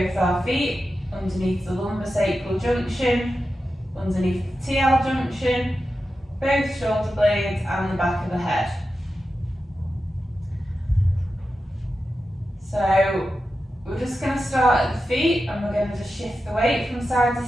our feet, underneath the lumbosacral junction, underneath the TL junction, both shoulder blades and the back of the head. So we're just going to start at the feet and we're going to just shift the weight from side to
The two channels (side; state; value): both; normal; correlation 0.91